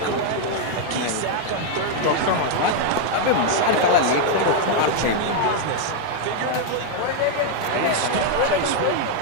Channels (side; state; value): both; different; correlation 0.00